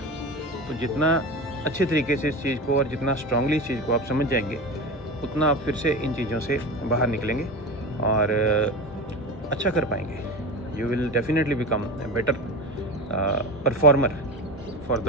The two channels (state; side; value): normal; both; correlation 0.27